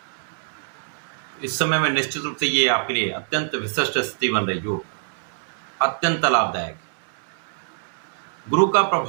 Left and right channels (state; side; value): silent; left; digital silence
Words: इस समय में निश्चित रूप से ये आपके लिए अत्यंत विशिष्ट स्थिति बन रही जो अत्यंत लाभदायक है। गुरु का